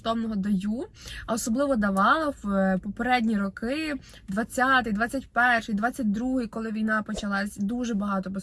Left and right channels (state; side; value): identical; both; correlation 1.00